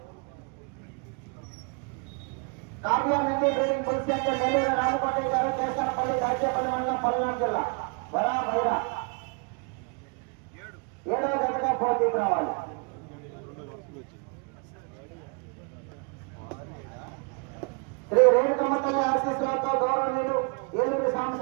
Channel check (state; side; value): quieter; left; 34.5 dB